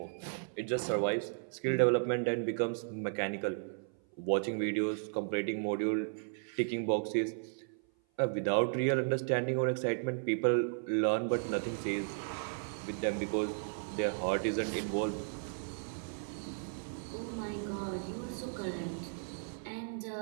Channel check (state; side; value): silent; left; 54 dB below the other